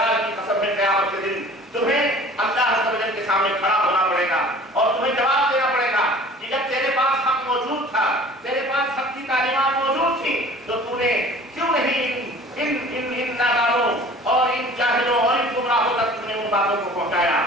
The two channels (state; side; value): normal; both; correlation 0.47